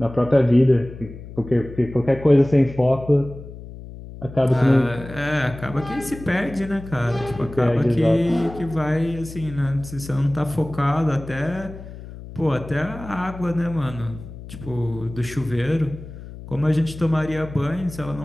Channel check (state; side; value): noise; left; hum, 14 dB below the sound